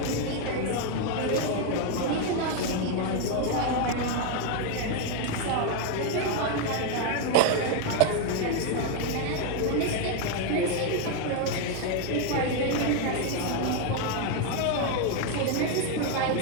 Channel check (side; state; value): both; different; correlation 0.01